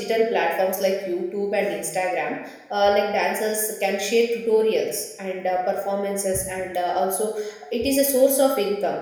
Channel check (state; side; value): identical; both; correlation 1.00